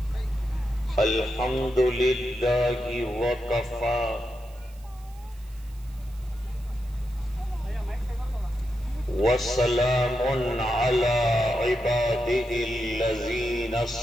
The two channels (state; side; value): noise; right; hiss, 26 dB below the sound